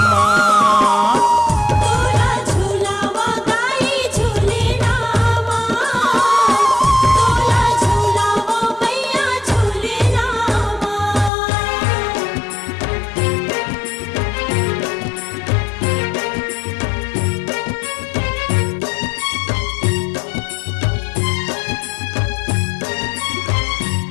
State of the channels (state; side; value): drops out; right; at 11.3 s